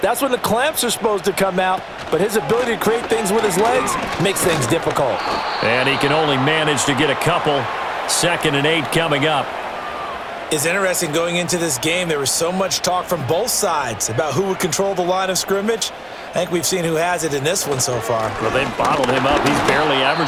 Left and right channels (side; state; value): both; identical; correlation 1.00